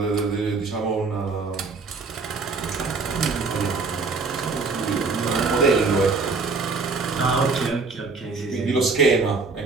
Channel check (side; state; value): left; quieter; 4.2 dB